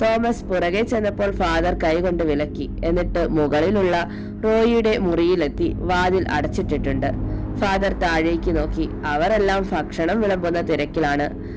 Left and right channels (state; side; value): identical; both; correlation 1.00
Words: തോമസ് പുറകെ ചെന്നപ്പോൾ ഫാദർ കൈകൊണ്ട് വിലക്കി. എന്നിട്ട് മുകളിലുള്ള റോയിയുടെ മുറിയിലെത്തി. വാതിൽ അടച്ചിട്ടിട്ടുണ്ട്. ഫാദർ താഴേക്ക് നോക്കി. അവരെല്ലാം ഭക്ഷണം വിളമ്പുന്ന തിരക്കിലാണ്.